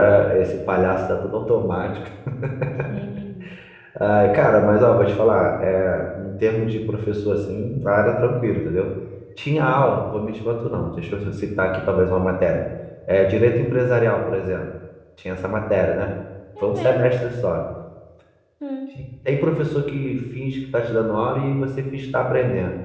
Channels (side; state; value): both; identical; correlation 1.00